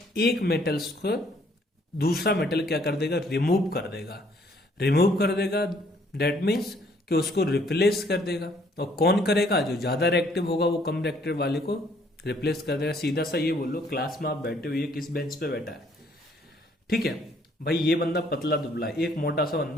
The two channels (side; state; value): both; normal; correlation 0.64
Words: एक मेटल्स को दूसरा मेटल क्या कर देगा, रिमूव कर देगा। रिमूव कर देगा दैट मीन्स कि उसको रिप्लेस कर देगा। और कौन करेगा, जो ज्यादा रिएक्टिव होगा वो कम रिएक्टिव वाले को रिप्लेस कर देगा। सीधा सा ये बोलो, क्लास में आप बैठे हुए किस बेंच पे बैठा है, ठीक है भाई, ये बंदा पतला दुबला है, एक मोटा सा